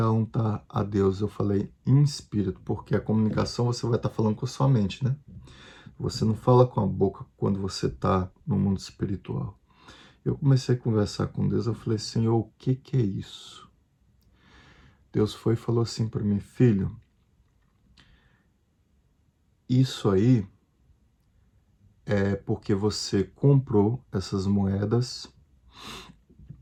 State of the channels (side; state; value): both; identical; correlation 1.00